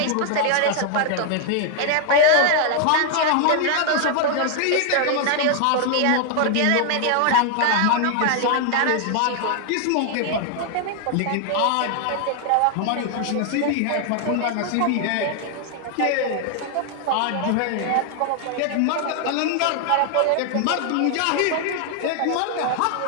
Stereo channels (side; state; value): both; different; correlation 0.00